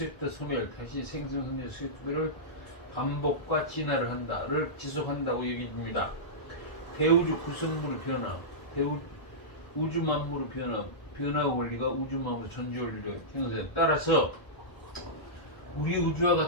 소멸, 다시 생성, 성장, 쇠퇴를 반복과 진화를 한다를 지속한다고 여깁니다. 대우주 구성물의 변화, 우주 만물의 변화 원리가 우주 만물의 존재 원리를 형성에 따라서 우리 우주와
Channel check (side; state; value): right; late; 1.3 ms